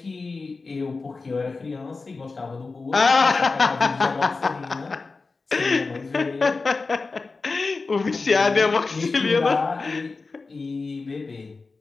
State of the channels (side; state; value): right; quieter; 4.0 dB